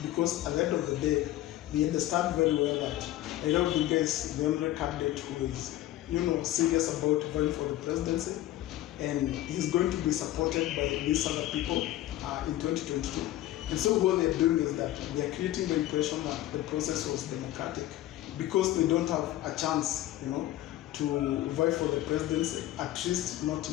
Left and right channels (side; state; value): right; quieter; 14.6 dB